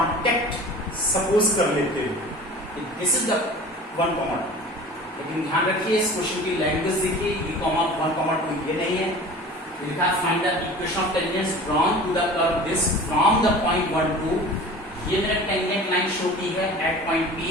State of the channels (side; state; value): both; normal; correlation 0.40